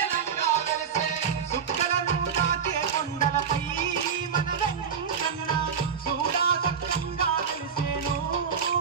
సుక్కలను దాకే కొండలపై మన వెంకన్న చూడా సత్యంగా వెలిసేను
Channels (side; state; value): left; quieter; 6.9 dB